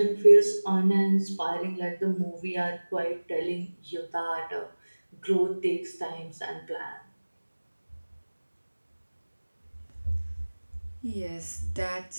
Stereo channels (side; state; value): both; inverted; correlation -1.00